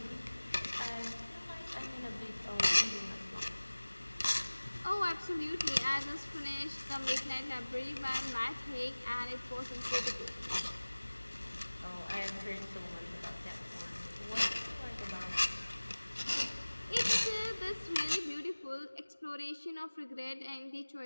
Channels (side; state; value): both; inverted; correlation -1.00